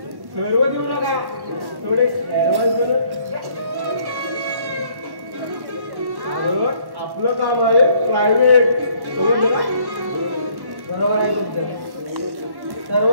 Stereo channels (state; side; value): late; left; 1.1 ms